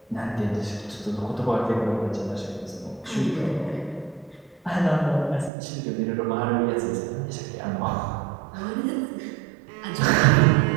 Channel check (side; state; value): left; drops out; at 5.5 s